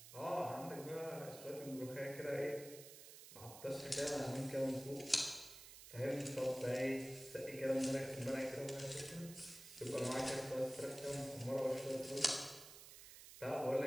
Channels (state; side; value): noise; right; hiss, 14 dB below the sound